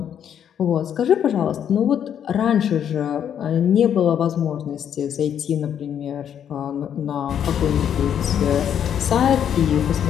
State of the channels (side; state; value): right; quieter; 9.1 dB